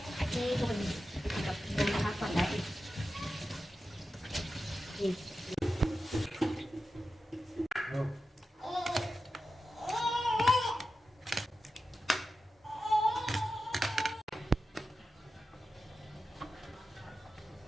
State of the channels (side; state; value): both; normal; correlation 0.92